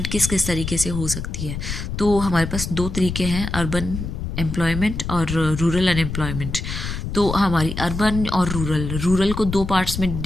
किस किस तरीके से हो सकती है। तो हमारे पास दो तरीके हैं, अर्बन एम्प्लॉयमेंट और रूरल अनएम्प्लॉयमेंट। तो हमारी अर्बन और रूरल को दो पार्ट्स में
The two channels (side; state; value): left; noise; rumble, 5 dB below the sound